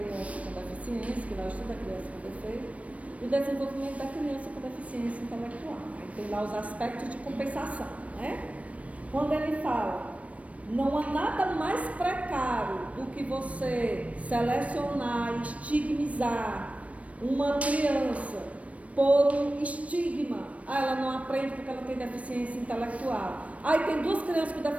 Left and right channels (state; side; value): late; left; 0.065 ms